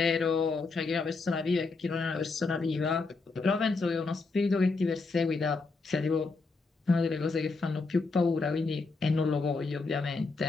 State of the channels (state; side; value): quieter; right; 3.9 dB